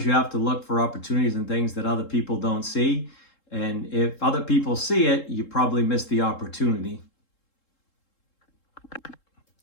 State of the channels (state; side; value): late; right; 3.7 ms